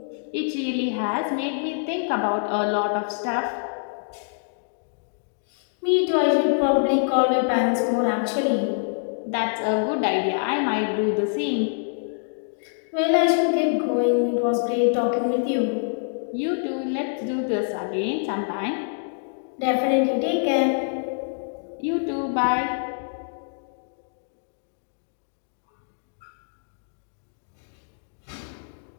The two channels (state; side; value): silent; right; digital silence